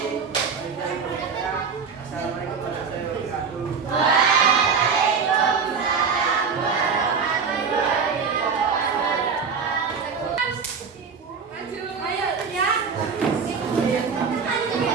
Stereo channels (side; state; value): left; quieter; 5.8 dB